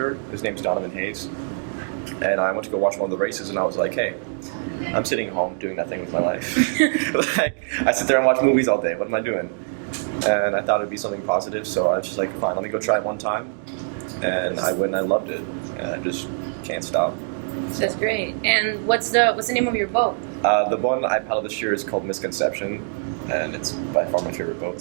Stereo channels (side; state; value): left; silent; digital silence